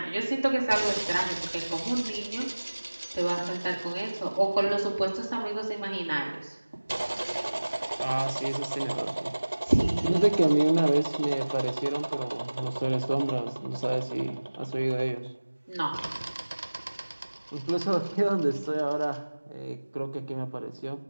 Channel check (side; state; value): both; inverted; correlation -1.00